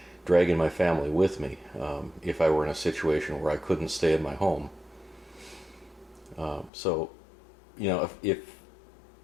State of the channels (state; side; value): drops out; right; at 6.7 s